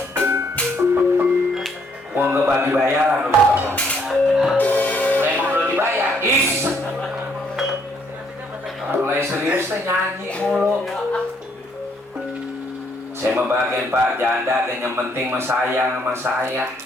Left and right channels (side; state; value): both; normal; correlation 0.69